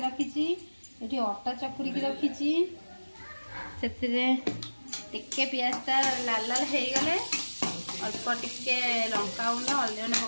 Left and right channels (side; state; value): both; inverted; correlation -1.00